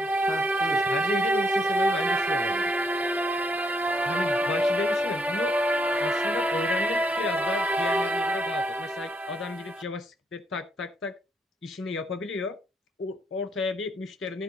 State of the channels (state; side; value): normal; both; correlation 0.74